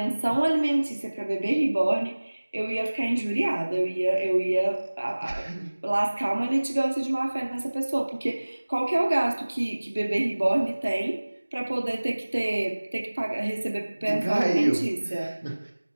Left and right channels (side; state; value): both; inverted; correlation -1.00